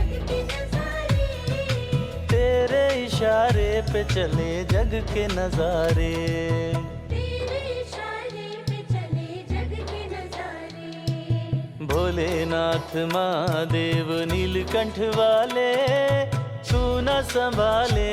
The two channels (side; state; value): both; identical; correlation 1.00